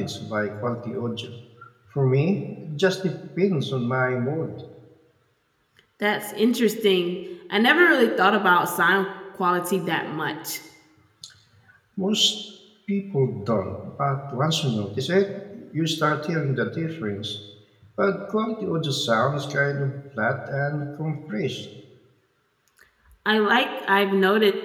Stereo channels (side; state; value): both; identical; correlation 1.00